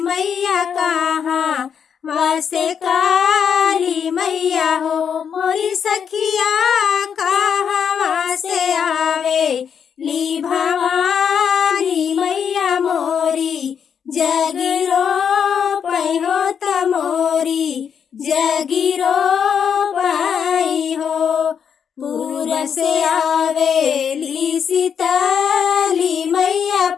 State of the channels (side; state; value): right; quieter; 7.5 dB